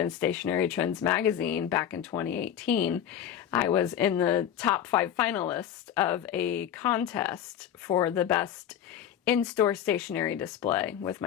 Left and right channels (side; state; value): right; quieter; 10.0 dB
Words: Stationery Trends magazine back in 2018. I was in the top 5 finalists of a contest for the best in-store stationery display with